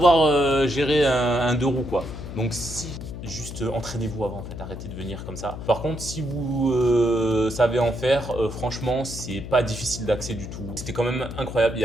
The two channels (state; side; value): noise; left; hum, 9 dB below the sound